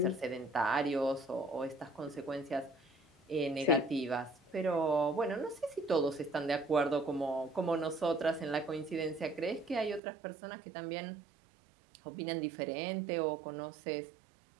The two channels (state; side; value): drops out; left; at 10.0 s